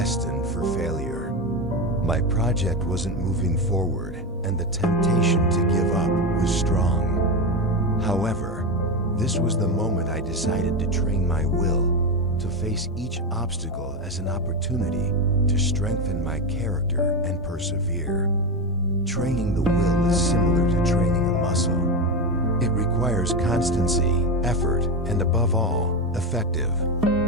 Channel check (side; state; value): both; normal; correlation 0.15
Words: for failure. My project wasn't moving forward, and the temptation to give up was strong. However, this was the moment I decided to train my will to face each obstacle as an opportunity to strengthen my character and persevere. Training the will is similar to training a muscle. It requires constancy, effort, and above all, effective